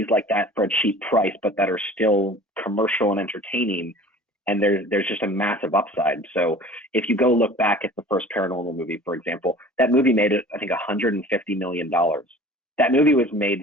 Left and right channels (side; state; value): both; normal; correlation 0.44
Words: like that for a cheap price, but that are still commercial and entertaining, and there's just a massive upside. So if you go look back at the first Paranormal movie, for example, that movie made, I think, $150 million. That movie was